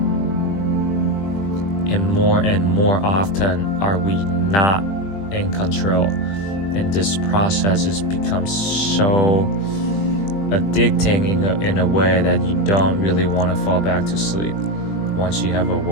And more often are we not in control. And this process has become so addicting in a way that you don't really want to fall back to sleep once you have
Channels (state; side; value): late; right; 20 ms